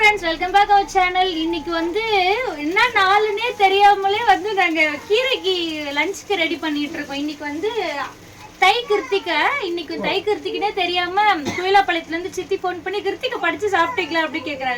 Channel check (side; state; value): both; identical; correlation 1.00